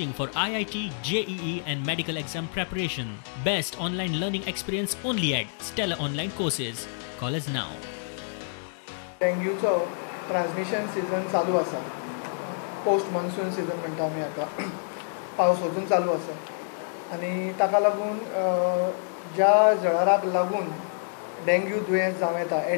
for IIT, JEE and medical exam preparation. Best online learning experience only at Stella Online Courses. Call us now. डेंग्यूचो ट्रान्समिशन सीजन चालू आसा. पोस्ट मॉन्सून सीजन म्हणटा आमी आतां. पावस वचून चालू आसा आनी ताका लागून ज्या जळाराक लागून डेंग्यू दुयेंस जावं येता,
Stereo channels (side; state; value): right; silent; digital silence